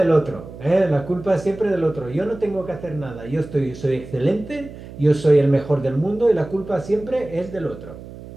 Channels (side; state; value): right; noise; hum, 15 dB below the sound